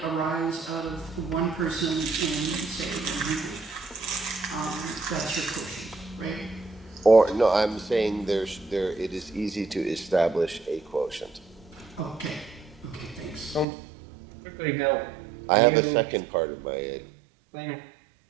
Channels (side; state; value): left; drops out; at 13.7 s